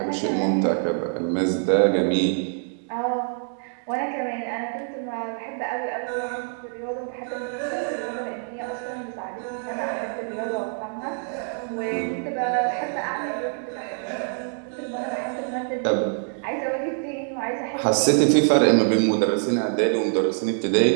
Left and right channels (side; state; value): left; silent; 57 dB below the other